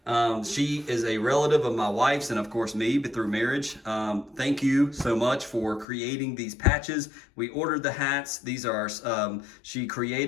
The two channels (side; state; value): right; drops out; at 5.9 s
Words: She is a relative of my wife's and of course me, but through marriage. Thank you so much for creating these patches. We ordered the hats. These are, she